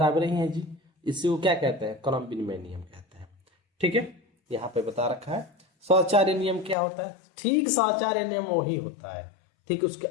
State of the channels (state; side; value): drops out; right; at 6.8 s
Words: ही है जी। इसी को क्या कहते हैं, क्रम विनिमय नियम कहते हैं। ठीक है, यहाँ पे बता रखा है। सहचार्य नियम क्या होता है, ठीक सहचार्य नियम वही होता है, ठीक उसके